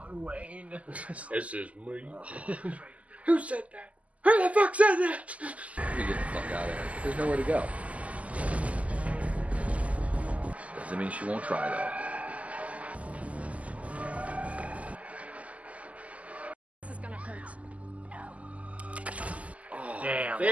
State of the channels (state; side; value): late; left; 0.070 ms